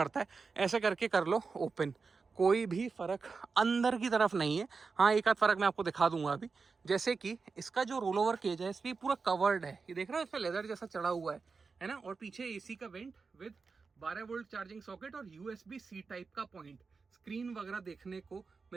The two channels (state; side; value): quieter; left; 4.7 dB